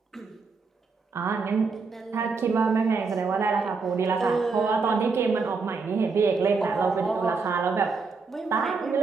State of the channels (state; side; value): quieter; left; 4.6 dB